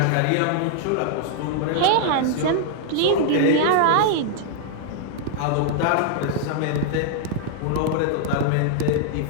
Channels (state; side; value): different; both; correlation -0.01